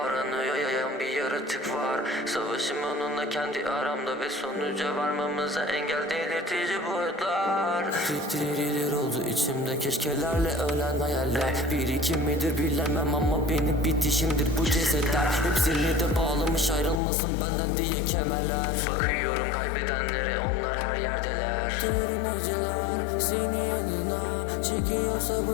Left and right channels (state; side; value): drops out; right; at 17.0 s